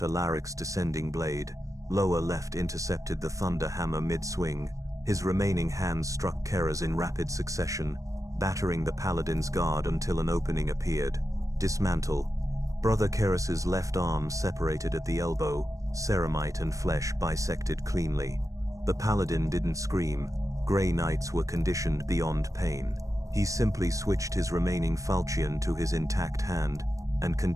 Alaric's descending blade. Lower left intercepted the thunder hammer mid-swing. His remaining hands struck Kera's in rapid succession, battering the paladin's guard until an opening appeared. Dismantle. Brother Keras's left arm separated at the elbow, ceramite and flesh bisected cleanly. The paladin didn't scream. Grey Knights were conditioned beyond pain. He simply switched his remaining falchion to his intact hand, and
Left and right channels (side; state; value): left; late; 0.16 ms